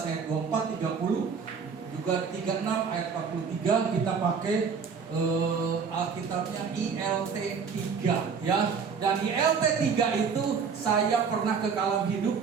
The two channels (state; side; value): quieter; left; 5.9 dB